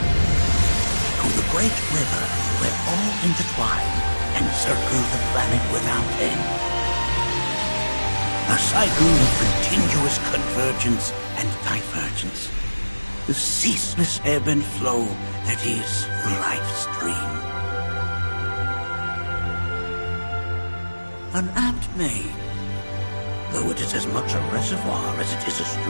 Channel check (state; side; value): inverted; both; correlation -1.00